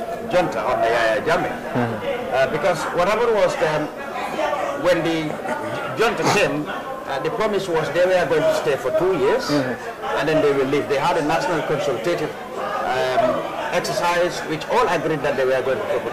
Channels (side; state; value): both; identical; correlation 1.00